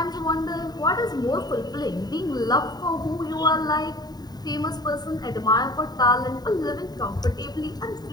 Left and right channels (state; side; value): late; right; 0.20 ms